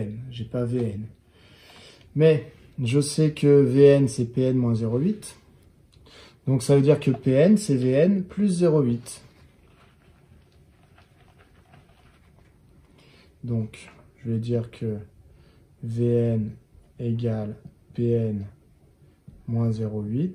je n'ai pas Vn. Mais je sais que Vn, c'est Pn moins 0,8. Donc, ça veut dire que Pn, c'est Vn plus 0,8. Donc, je vais dire que Vn égale Pn moins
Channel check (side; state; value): both; identical; correlation 1.00